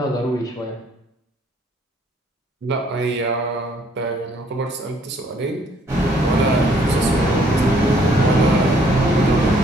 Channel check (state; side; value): normal; both; correlation 0.64